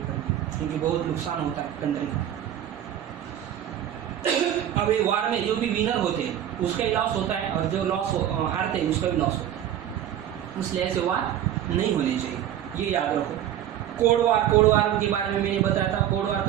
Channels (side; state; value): left; quieter; 10.9 dB